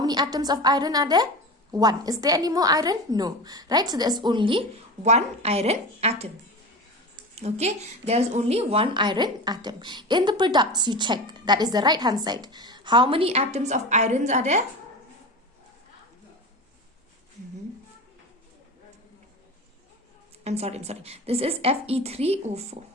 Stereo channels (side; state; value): both; normal; correlation 0.29